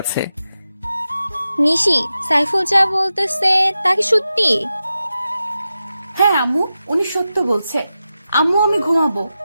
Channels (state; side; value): inverted; both; correlation -0.91